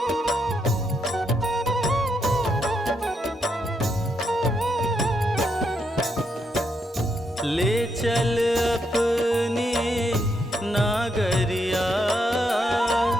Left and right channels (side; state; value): both; normal; correlation 0.79